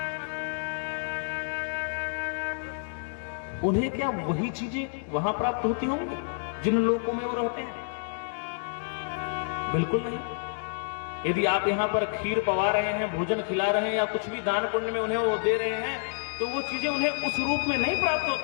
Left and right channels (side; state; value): right; silent; digital silence